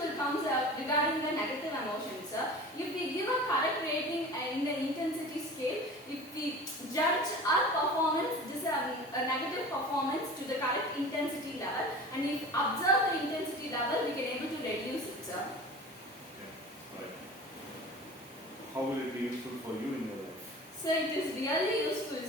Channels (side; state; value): both; normal; correlation 0.38